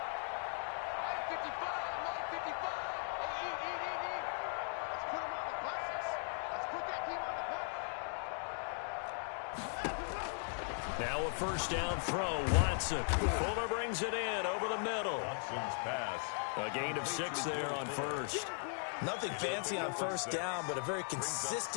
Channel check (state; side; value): silent; right; 52 dB below the other